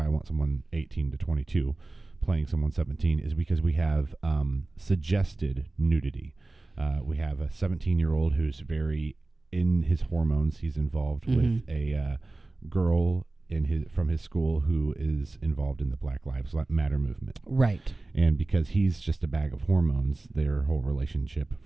I want someone 18 to 22 playing someone 17, is because we have suggested nudity. We have a 17-year-old who's very in his hormones. He's involved with a girl from his school who is involved in the Black Lives Matter movement. Right. And because he's just a bag of hormones, their whole relationship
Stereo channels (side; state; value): left; quieter; 3.0 dB